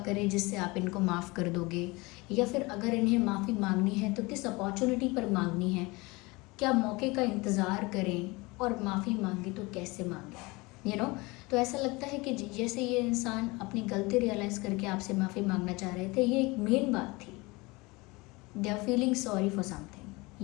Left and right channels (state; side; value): quieter; right; 24.2 dB